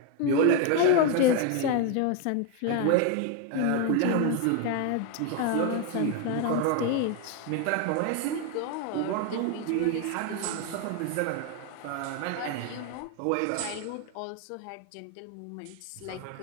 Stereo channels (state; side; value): different; both; correlation 0.01